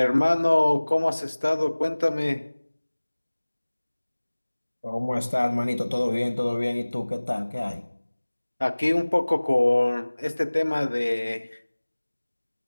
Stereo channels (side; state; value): both; inverted; correlation -1.00